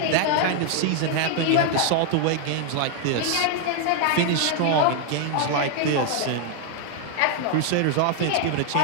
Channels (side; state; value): both; different; correlation 0.00